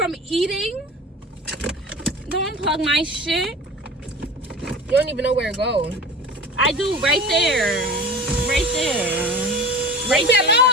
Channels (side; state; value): both; normal; correlation 0.36